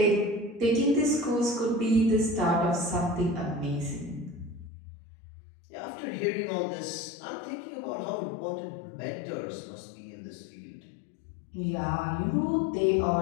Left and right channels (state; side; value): drops out; right; at 4.7 s